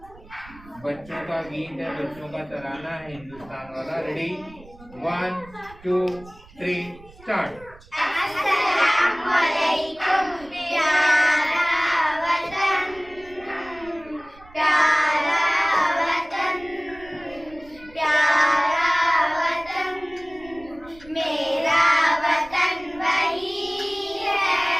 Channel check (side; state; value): right; noise; rumble, 23 dB below the sound